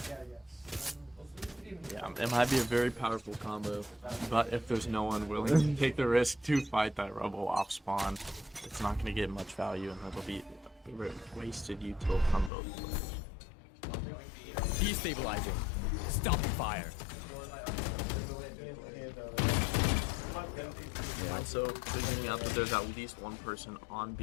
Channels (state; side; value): drops out; right; at 12.5 s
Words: Yeah, it might be a very powerful combo, but if there's no one willing to take the risk to fight that Rebel off spawn, it's not going to get much value, and that'll be wasted util from both players. Destabilizing. Stop fire. Yeah, so figuring out that there's at least one person on